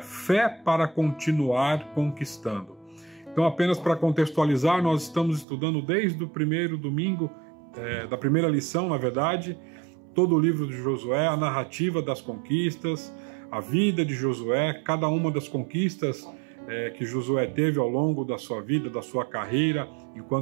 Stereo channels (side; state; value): left; drops out; at 5.5 s